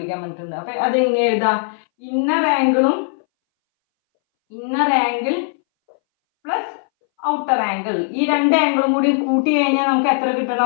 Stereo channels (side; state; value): right; silent; 63 dB below the other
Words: പറഞ്ഞിട്ടുണ്ട്. അപ്പോൾ അതെങ്ങനെ എഴുതാം? Inner angle plus outer angle. ഈ രണ്ട് ആംഗിളും കൂടി കൂട്ടി കഴിഞ്ഞാൽ നമുക്ക് എത്ര